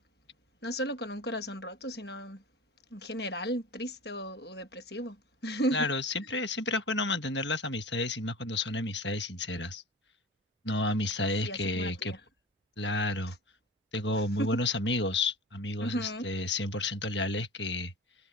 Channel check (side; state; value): both; normal; correlation 0.35